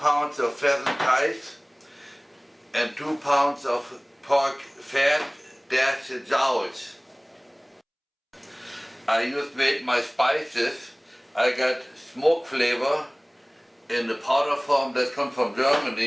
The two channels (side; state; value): both; identical; correlation 1.00